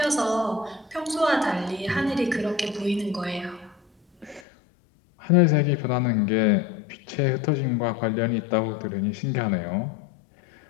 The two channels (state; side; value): drops out; right; at 4.4 s